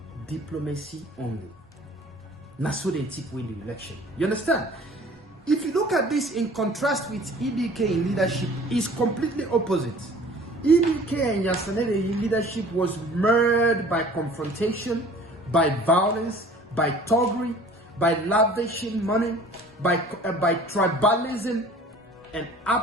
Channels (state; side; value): normal; both; correlation 0.49